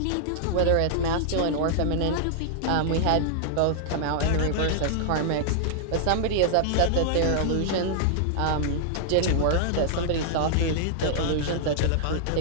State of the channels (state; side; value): different; both; correlation -0.01